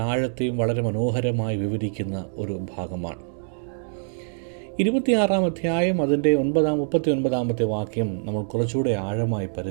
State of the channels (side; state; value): left; silent; digital silence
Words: ആഴത്തെയും വളരെ മനോഹരമായി വിവരിക്കുന്ന ഒരു ഭാഗമാണ്. 26 അധ്യായം അതിൻ്റെ 39 വാക്യം നമ്മൾ കുറച്ചുകൂടെ ആഴമായി